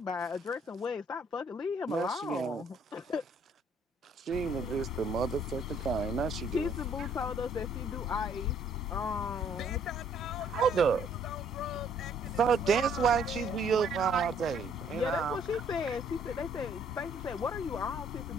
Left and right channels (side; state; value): both; normal; correlation 0.62